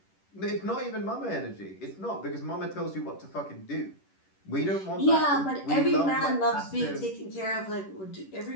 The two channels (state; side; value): late; right; 10 ms